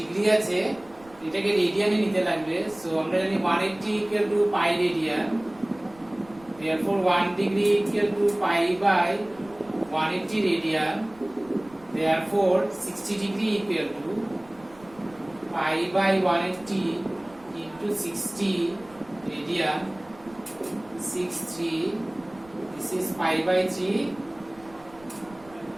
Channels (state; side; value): noise; right; rumble, 25 dB below the sound